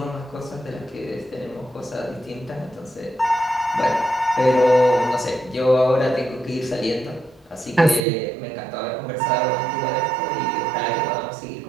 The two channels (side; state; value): left; drops out; at 8.1 s